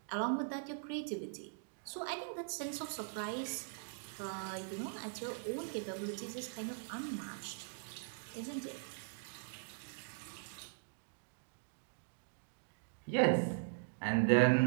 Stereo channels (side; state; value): left; silent; digital silence